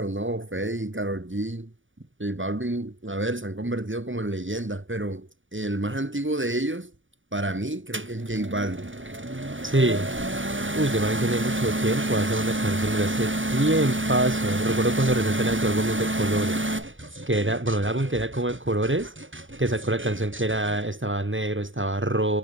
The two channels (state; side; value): late; left; 0.57 ms